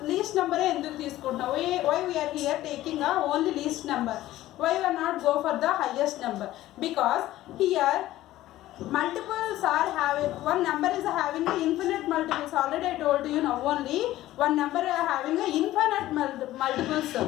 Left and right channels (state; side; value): quieter; right; 15.1 dB